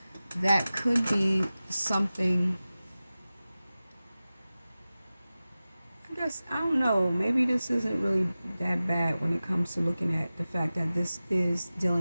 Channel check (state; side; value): inverted; both; correlation -0.96